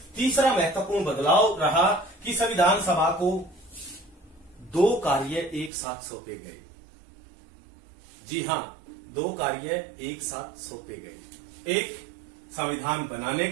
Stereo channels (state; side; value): drops out; left; at 5.7 s